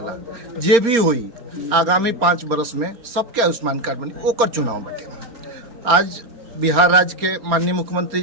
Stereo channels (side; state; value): left; late; 4.3 ms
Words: जे भी हुई आगामी 5 बरस में सबके आयुष्मान कार्ड बनी, ओकर चुनाव बाटे। आज बिहार राज्य के माननीय मुख्यमंत्री